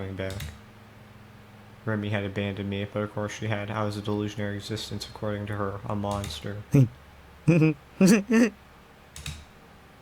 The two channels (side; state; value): both; identical; correlation 1.00